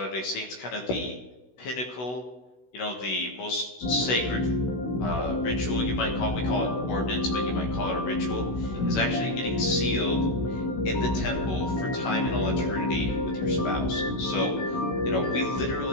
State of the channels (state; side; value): late; right; 16 ms